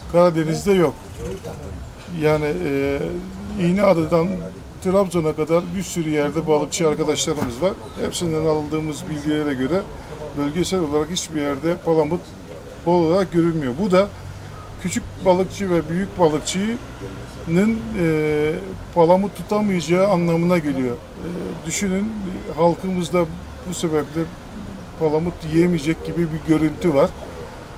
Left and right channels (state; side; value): identical; both; correlation 1.00